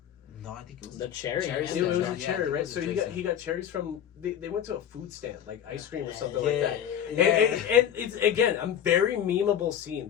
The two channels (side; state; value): right; quieter; 9.5 dB